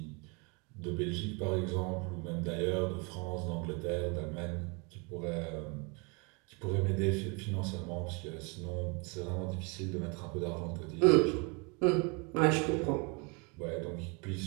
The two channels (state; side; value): quieter; left; 30.5 dB